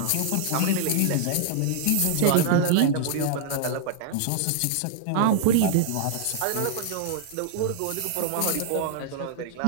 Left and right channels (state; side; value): different; both; correlation 0.00